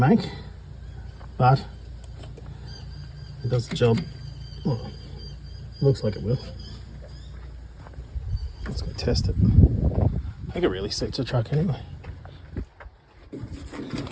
but it does the job. Well, looks like it will. Let's go test it. I think it really suits the truck anyway.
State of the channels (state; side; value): identical; both; correlation 1.00